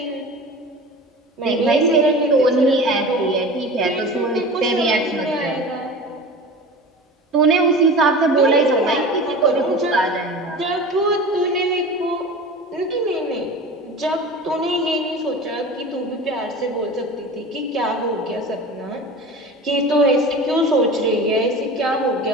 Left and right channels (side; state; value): both; normal; correlation 0.35